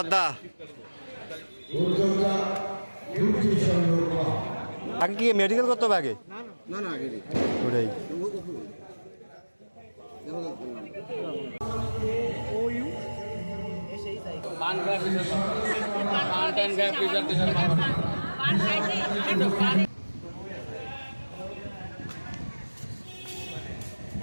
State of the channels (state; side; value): inverted; both; correlation -1.00